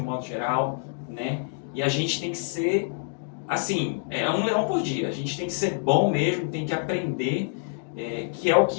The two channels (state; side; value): silent; right; 61 dB below the other